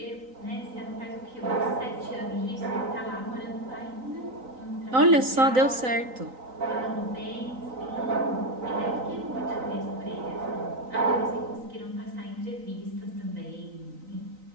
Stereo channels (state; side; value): late; left; 3.9 ms